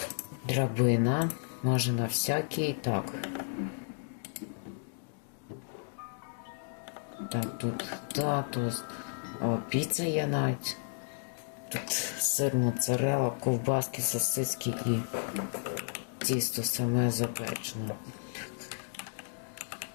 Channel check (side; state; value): right; silent; digital silence